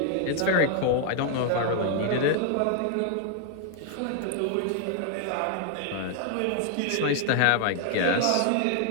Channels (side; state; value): both; different; correlation 0.00